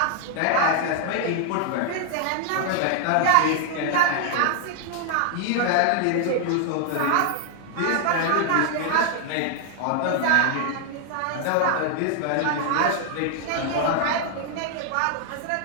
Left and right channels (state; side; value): different; both; correlation 0.00